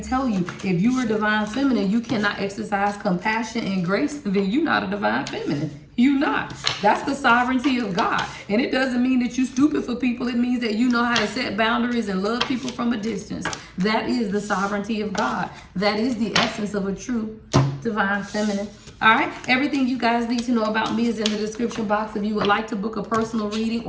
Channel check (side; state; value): both; identical; correlation 1.00